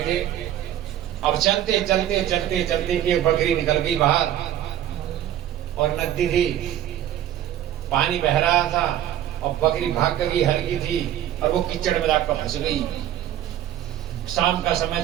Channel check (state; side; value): quieter; left; 11.7 dB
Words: थे। अब चलते चलते चलते चलते एक बकरी निकल गई बाहर और नदी थी, पानी बह रहा था और बकरी भाग गई, हल्की थी और वो कीचड़ में जाकर फंस गई। शाम का समय